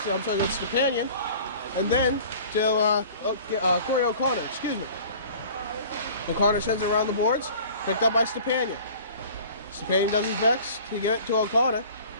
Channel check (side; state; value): both; inverted; correlation -0.46